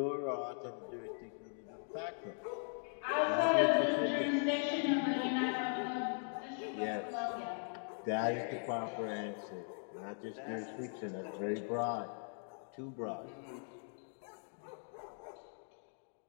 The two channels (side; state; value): right; silent; 51 dB below the other